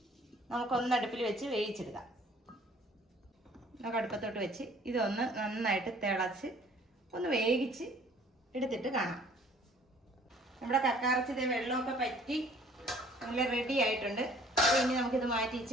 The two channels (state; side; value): normal; both; correlation 0.56